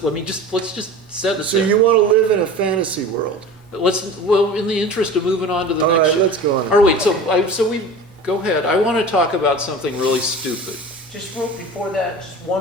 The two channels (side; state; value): both; normal; correlation 0.36